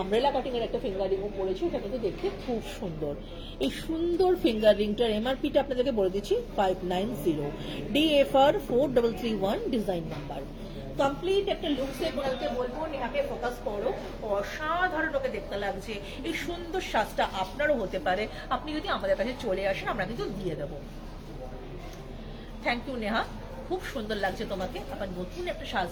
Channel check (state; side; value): identical; both; correlation 1.00